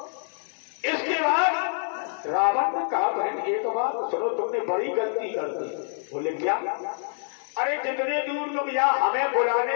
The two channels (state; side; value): silent; right; digital silence